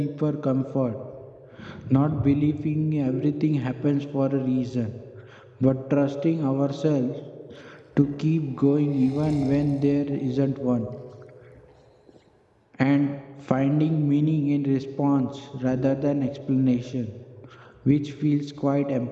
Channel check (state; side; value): identical; both; correlation 1.00